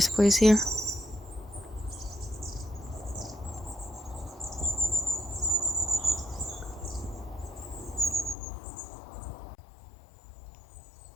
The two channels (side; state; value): right; drops out; at 8.3 s